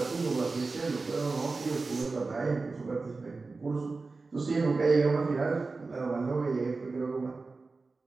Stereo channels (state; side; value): quieter; left; 3.9 dB